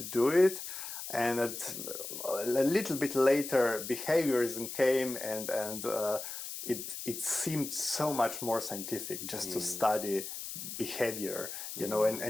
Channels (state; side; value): noise; left; hiss, 8 dB below the sound